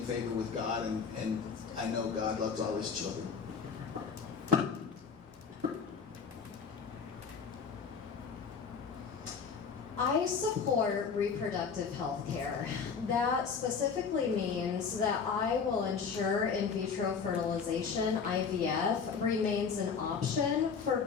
favor with God, and I know God loves all his children. I support reproductive health care. That specifically means that I will ensure in vitro fertilization, IVF, remains an option for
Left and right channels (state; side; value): quieter; right; 5.9 dB